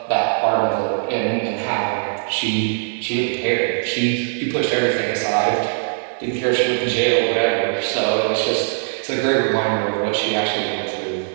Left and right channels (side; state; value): left; silent; 65 dB below the other